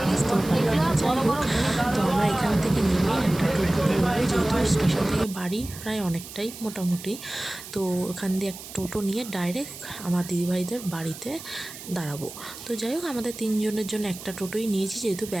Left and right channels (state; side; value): noise; right; hiss, 13 dB below the sound